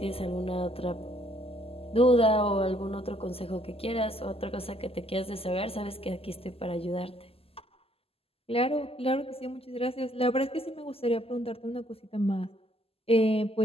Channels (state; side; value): late; right; 0.28 ms